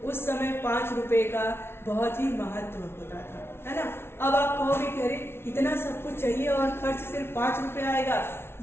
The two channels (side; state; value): right; late; 0.12 ms